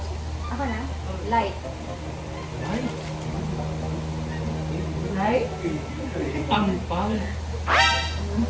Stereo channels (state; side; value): identical; both; correlation 1.00